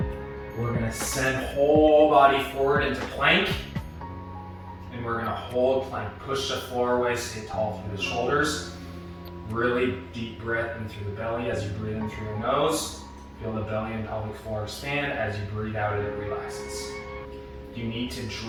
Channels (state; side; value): identical; both; correlation 1.00